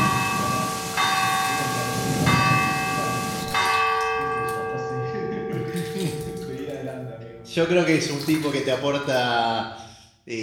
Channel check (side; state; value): both; identical; correlation 1.00